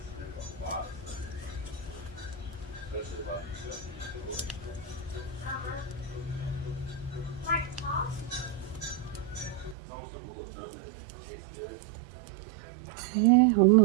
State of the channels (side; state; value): left; drops out; at 9.8 s